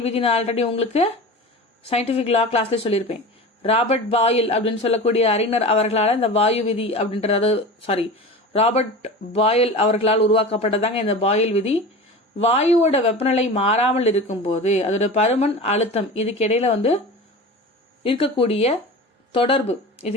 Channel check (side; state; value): both; normal; correlation 0.33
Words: விதி நான் ஆல்ரெடி உங்களுக்கு சயின்டிபிக் லா கிளாஸ்ல சொல்லியிருப்பேன். ராபர்ட் பாயில் அப்படின்னு சொல்லக்கூடிய அறிஞர் அவர்களால் இந்த வாயு விதி அப்படின்றது, ராபர்ட் பாயில் அவர்களால் உருவாக்கப்பட்டதாங்க இந்த பாயில் விதி. வாயுவோட வெப்பநிலை மாறாமல் இருக்கும் போது அதோட பருமன், அழுத்தம் இதுக்கு இடையில வந்து இருக்கக்கூடிய தொடர்பு,